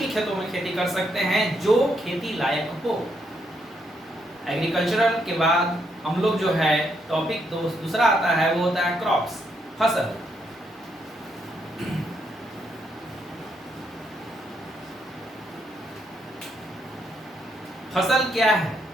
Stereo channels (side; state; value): both; normal; correlation 0.76